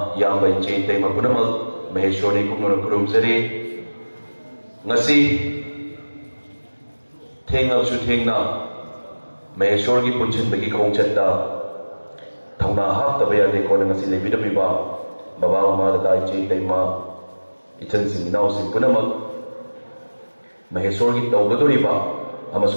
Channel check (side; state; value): both; inverted; correlation -1.00